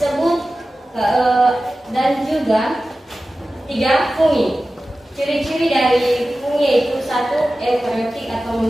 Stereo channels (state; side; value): normal; both; correlation 0.95